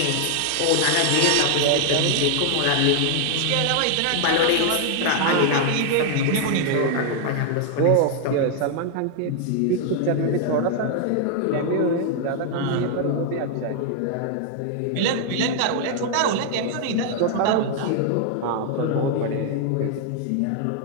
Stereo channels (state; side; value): different; both; correlation 0.00